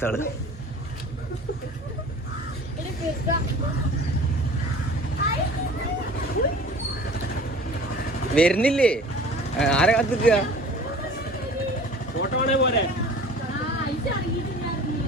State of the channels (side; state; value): both; normal; correlation 0.43